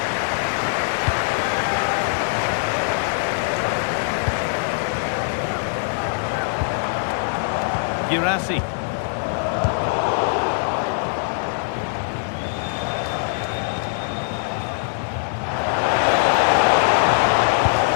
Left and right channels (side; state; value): right; silent; 64 dB below the other